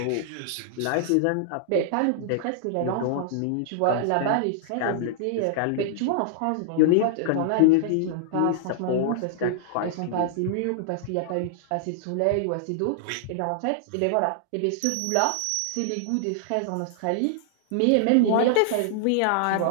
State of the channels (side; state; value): both; different; correlation -0.01